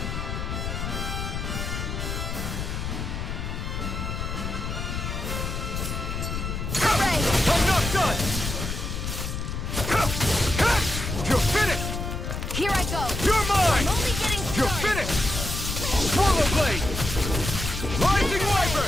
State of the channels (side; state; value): left; noise; rumble, 4 dB below the sound